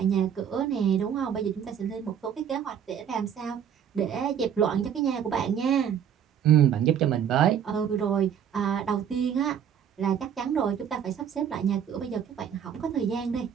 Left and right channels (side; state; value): left; quieter; 8.6 dB